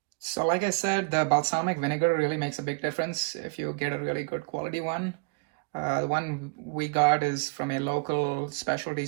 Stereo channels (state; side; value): quieter; left; 29.8 dB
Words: So like I said, the balsamic vinegar really makes a big difference if you get a really good quality one. The one we got is from a local specialty